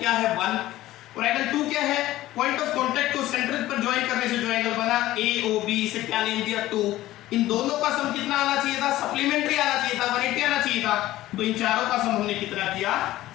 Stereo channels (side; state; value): right; quieter; 15.6 dB